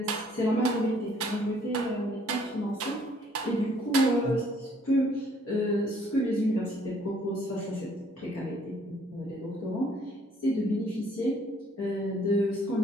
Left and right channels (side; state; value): both; normal; correlation 0.62